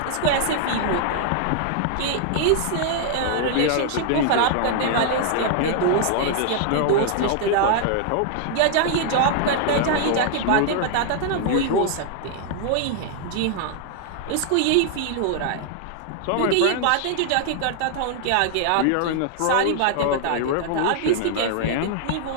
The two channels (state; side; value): different; both; correlation 0.00